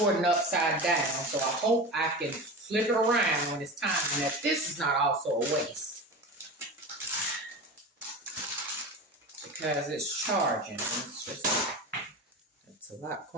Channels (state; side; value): normal; both; correlation 0.29